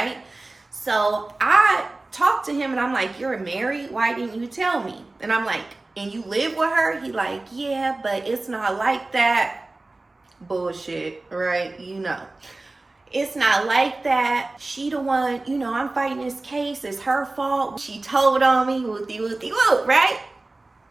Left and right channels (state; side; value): quieter; left; 3.1 dB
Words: So I talked to him and I'm like, you're married? Why didn't you tell me? And I'm like, and you live with her? He like, yeah, but it's not like that. Bullshit, right? You know. It's not like that. She the one, you know, I'm fighting this case. It's her fault. She told on me, whoopty whoopty whoop, right?